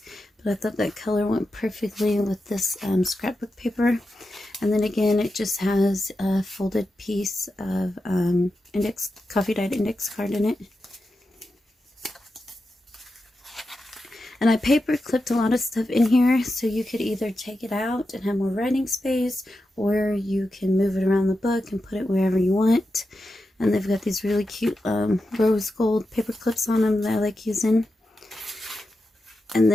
But I thought that color went perfectly with this scrapbook paper. And then again, it just has a folded piece of coffee dyed index card in it. And I paper clipped a lot of stuff in here, so you could either take it out and have more writing space, or you can move it around the book and put it wherever you want. And they've got these really cute rose gold paper clips on them that I like using. And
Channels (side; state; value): both; normal; correlation 0.90